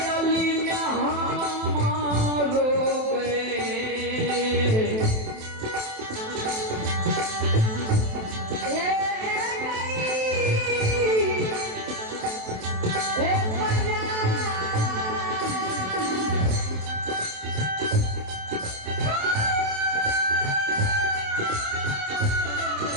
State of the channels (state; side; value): late; left; 27 ms